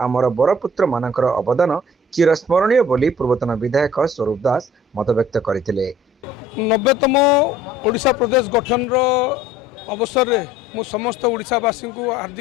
बड़पुत्र मानकर अवदान चिरस्मरणीय बोली पूर्वतन विधायक स्वरूप दास मत व्यक्त करथिले। 90तम ओडिशा प्रदेश गठन अवसर में मु समस्त ओडिशावासी को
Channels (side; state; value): both; normal; correlation 0.53